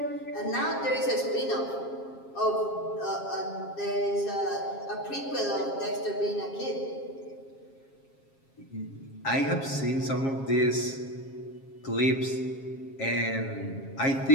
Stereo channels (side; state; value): right; late; 7.4 ms